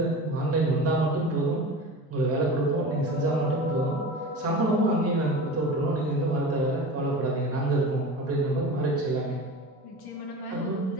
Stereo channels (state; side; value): normal; both; correlation 0.33